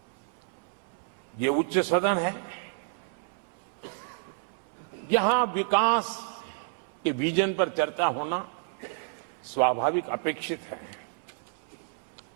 ये उच्च सदन है, यहां विकास के विजन पर चर्चा होना स्वाभाविक अपेक्षित है,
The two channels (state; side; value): silent; left; 58 dB below the other